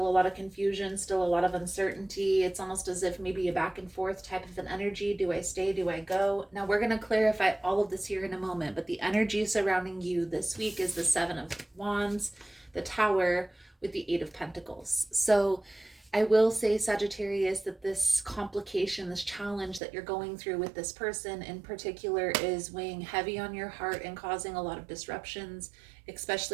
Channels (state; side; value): drops out; left; at 19.8 s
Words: a lot of confusion, still a lot of uncertainty. It's almost as if maybe a back and forth type of an energy. Do I stay? Do I go? Now we're going to clarify all of this here in a moment, but the energy surrounding you this week is the Seven of Wands, the Tower, with the Eight of Pentacles. So I will say, Sagittarius, that this complication, this challenge that you're going through with this person in particular is weighing heavy on your heart and causing a lot of disruptions,